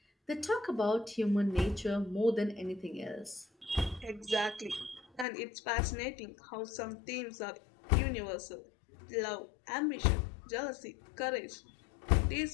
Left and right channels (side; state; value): right; drops out; at 5.2 s